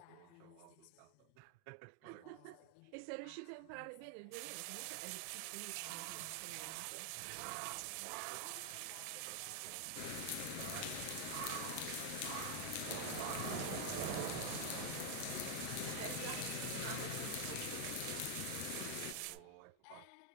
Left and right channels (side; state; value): both; different; correlation 0.00